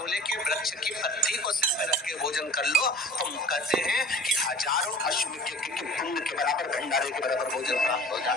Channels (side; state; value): both; normal; correlation 0.43